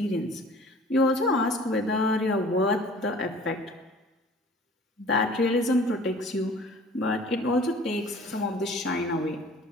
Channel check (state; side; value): normal; both; correlation 0.48